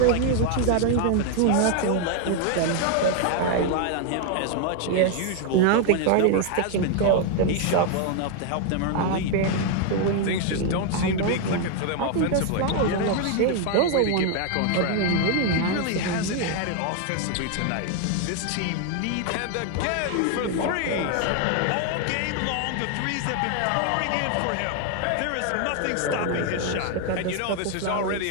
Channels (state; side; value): different; both; correlation 0.00